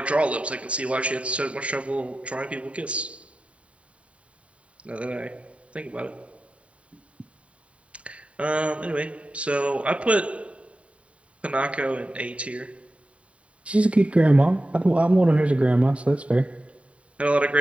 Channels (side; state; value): left; late; 0.064 ms